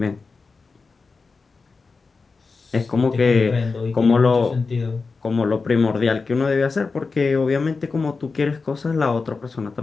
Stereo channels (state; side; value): quieter; right; 4.4 dB